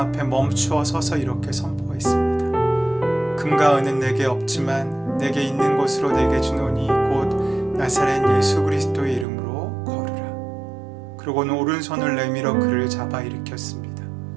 앞에 멈추어 서서 이렇게 선포했습니다. 금과 은은 내게 없지만 내게 있는 것으로 내게 주노니 곧 나사렛 예수 그리스도의 이름으로 걸으라. 그러고는 오른손을 내밀어 그를 잡아 일으켰습니다.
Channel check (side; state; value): left; drops out; at 9.2 s